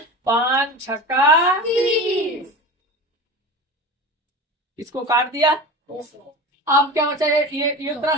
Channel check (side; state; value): both; normal; correlation 0.31